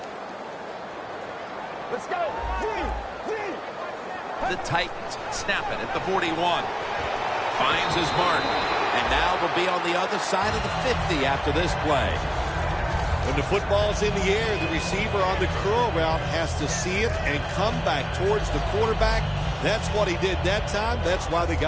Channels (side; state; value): both; identical; correlation 1.00